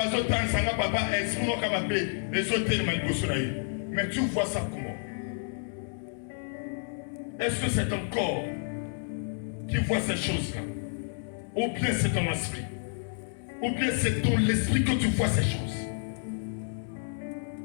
dit que papa est mon capable les autres. Mais tu vois ça comment? Est-ce que c'est ton corps qui voit ces choses-là? Ou bien c'est ton esprit? Ou bien c'est ton l'esprit que tu vois ces choses?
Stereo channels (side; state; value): right; silent; digital silence